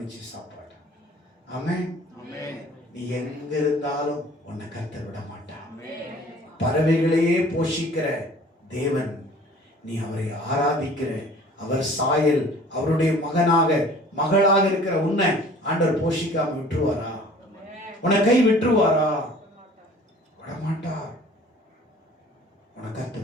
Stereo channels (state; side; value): normal; both; correlation 0.49